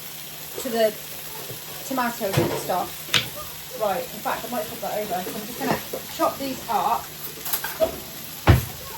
to the tomatoes and stuff. Right, in fact I might put that over. So I'm just going to chop these up.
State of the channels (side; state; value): both; identical; correlation 1.00